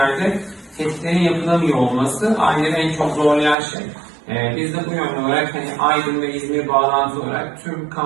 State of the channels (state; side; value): drops out; left; at 3.6 s